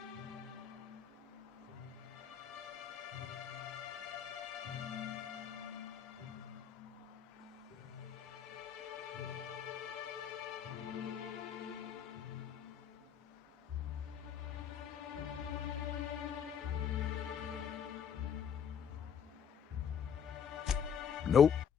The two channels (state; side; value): quieter; right; 7.8 dB